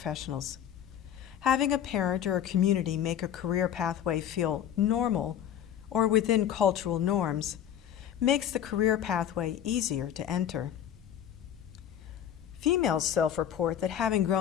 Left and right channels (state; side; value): quieter; right; 9.9 dB